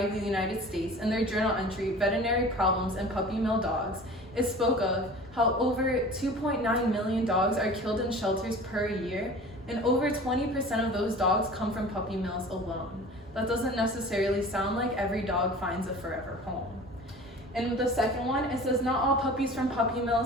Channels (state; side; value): normal; both; correlation 0.41